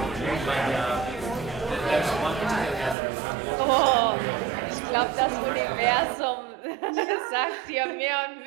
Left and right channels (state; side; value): drops out; left; at 3.0 s